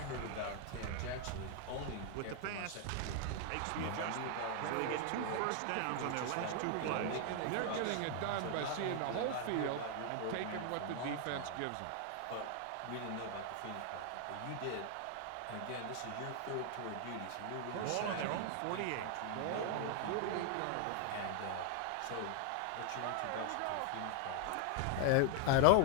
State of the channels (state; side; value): different; both; correlation 0.00